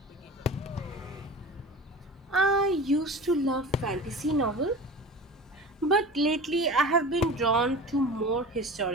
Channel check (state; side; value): normal; both; correlation 0.35